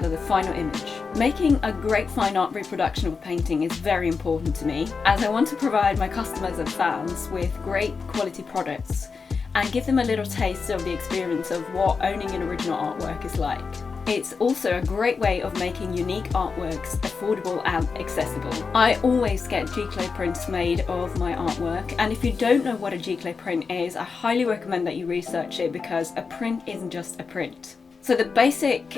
the final image. Making a great fine art reproduction of a painting is very important to me, as I want to provide my customers and fans with great quality products and give them a little taste of the experience of what owning an original artwork is like. It's also a great way of making unique artworks affordable and accessible. I always get G-clay prints made of my artwork, and if you don't know what a G-clay print is, I highly recommend that you research it, because a print isn't just a print. So the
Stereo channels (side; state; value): right; quieter; 5.1 dB